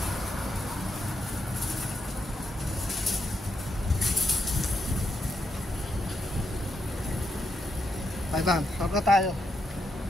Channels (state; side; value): normal; both; correlation 0.81